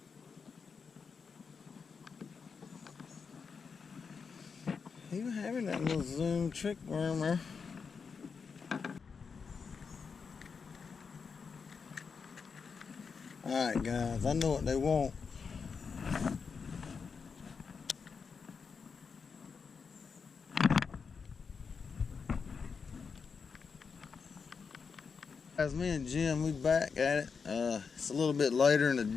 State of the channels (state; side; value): quieter; right; 5.6 dB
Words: He was having that little zoom trick wormer. Alright guys, I know what they want. Guys, me and Jim, we back at it. It's a little bit later in the